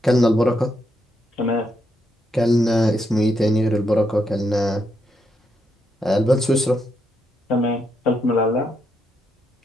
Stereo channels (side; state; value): both; normal; correlation 0.79